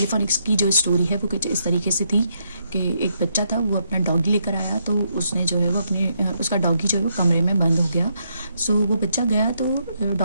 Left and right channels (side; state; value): both; inverted; correlation -0.77